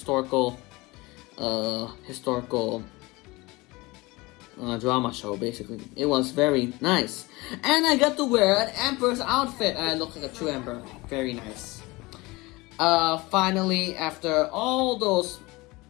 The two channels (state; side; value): quieter; right; 22.6 dB